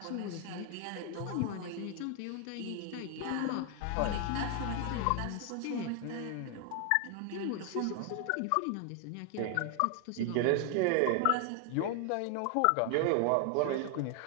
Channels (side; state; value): both; different; correlation 0.00